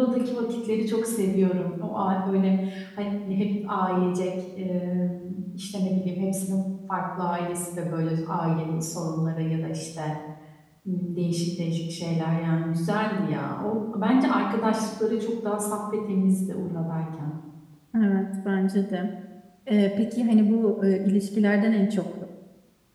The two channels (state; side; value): identical; both; correlation 1.00